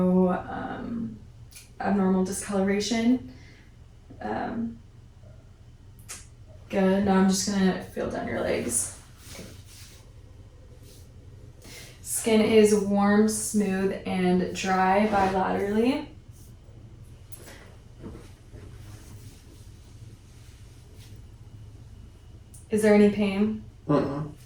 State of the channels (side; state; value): both; identical; correlation 1.00